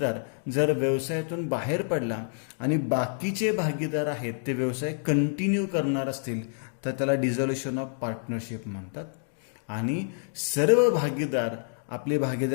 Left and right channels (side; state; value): right; silent; digital silence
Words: जर व्यवसायातून बाहेर पडला आणि बाकीचे भागीदार आहेत ते व्यवसाय कंटिन्यू करणार असतील तर त्याला डिझॉल्युशन ऑफ पार्टनरशिप म्हणतात. आणि सर्व भागीदार आपली